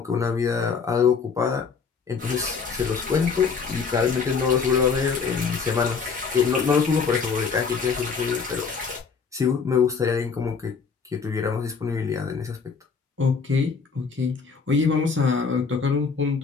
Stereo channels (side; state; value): right; quieter; 5.5 dB